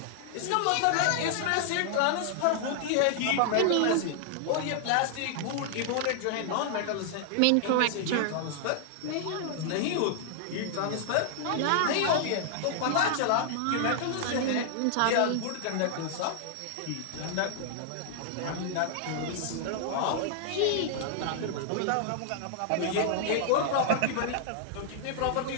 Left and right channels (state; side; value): different; both; correlation -0.01